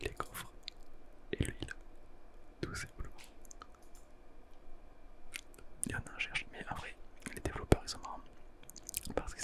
les coffres et l'huile, tout simplement. Il y en a, je cherche, mais en vrai, les développeurs ils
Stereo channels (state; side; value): identical; both; correlation 1.00